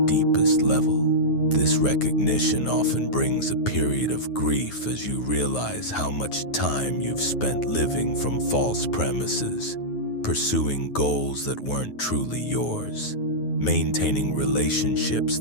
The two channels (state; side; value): late; right; 9.4 ms